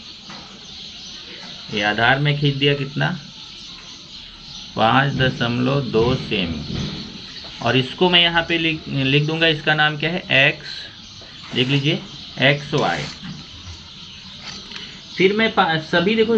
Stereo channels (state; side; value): identical; both; correlation 1.00